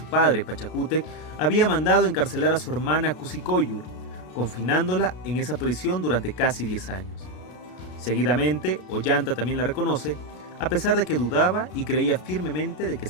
padre, Pachacútec, había mandado encarcelar a su hermana Cusicoyur, confinándola en esa prisión durante casi 10 años. Seguidamente, Ollanta también la reconoce, a pesar de que dudaba y creía firmemente de que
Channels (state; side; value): late; right; 33 ms